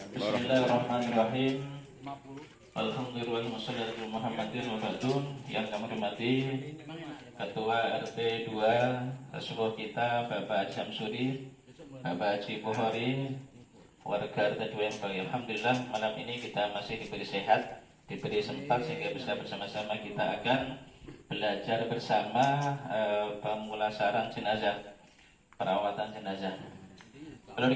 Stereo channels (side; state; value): both; identical; correlation 1.00